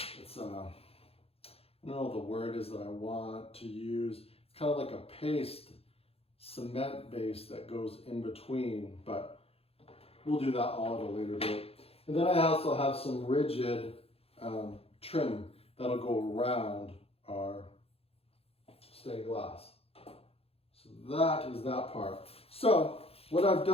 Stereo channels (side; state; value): right; late; 0.28 ms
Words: don't know what the word is that I want to use. It's kind of like a paste, cement base that goes in between, but we'll do that all at a later date. And then I also have some rigid trim that'll go around our stained glass. So that is that part. So what I've